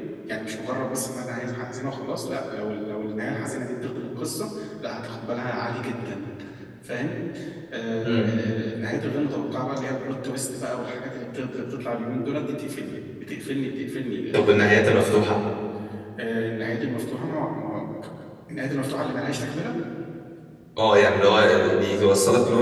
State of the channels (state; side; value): identical; both; correlation 1.00